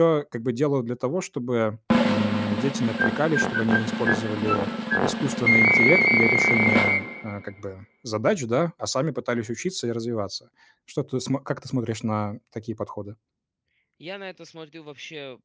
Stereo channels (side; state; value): both; identical; correlation 1.00